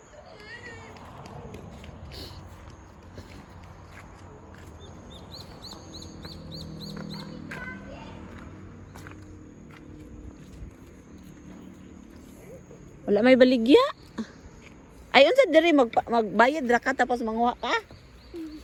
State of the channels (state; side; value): identical; both; correlation 1.00